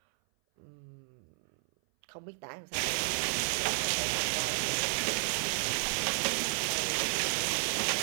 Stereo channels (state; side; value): silent; left; 56 dB below the other